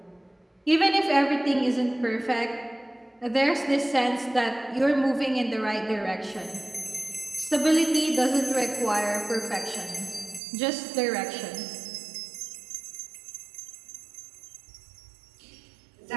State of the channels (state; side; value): drops out; left; at 10.4 s